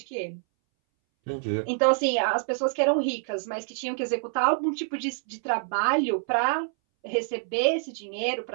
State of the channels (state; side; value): silent; left; 60 dB below the other